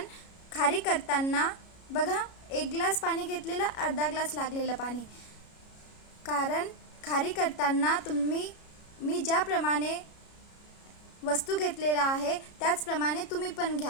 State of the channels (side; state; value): right; late; 33 ms